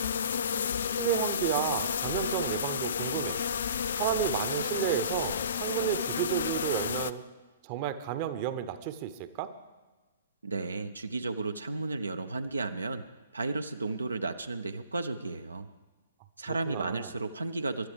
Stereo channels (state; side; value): inverted; both; correlation -0.45